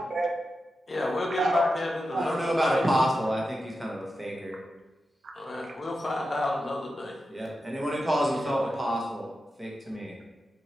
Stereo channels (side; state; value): both; normal; correlation 0.90